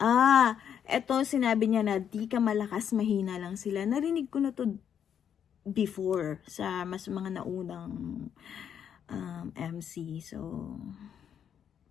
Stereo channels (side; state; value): right; quieter; 8.6 dB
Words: Eto sinabi niya na di ka malakas, mahina lang sila. Narinig ko na to before sa mas mga naunang MC. So,